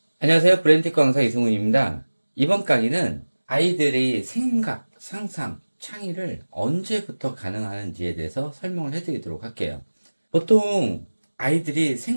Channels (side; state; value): both; inverted; correlation -1.00